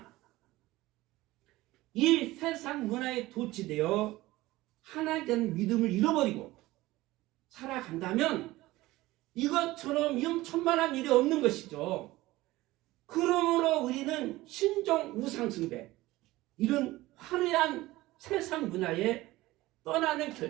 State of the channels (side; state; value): left; quieter; 18.3 dB